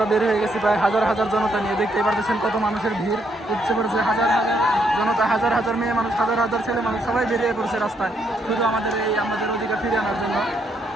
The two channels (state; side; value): normal; both; correlation 0.74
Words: বের হয়ে গেছি প্রায় হাজার হাজার জনতা নিয়ে। দেখতেই পাচ্ছেন কত মানুষের ভিড় উঠছে পড়েছে, হাজার হাজার জনতা, হাজার হাজার মেয়ে মানুষ, হাজার হাজার ছেলে মানুষ, সবাই বেরিয়ে পড়ছে রাস্তায় শুধু আমাদের অধিকার ফিরিয়ে আনার জন্য।